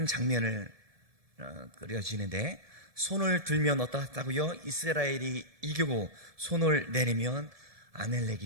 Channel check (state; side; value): late; left; 1.7 ms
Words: 장면을 그려지는데, 손을 들면 어떻다고요? 이스라엘이 이기고 손을 내리면